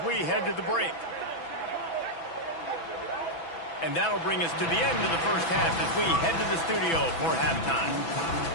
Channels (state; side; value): late; right; 6.1 ms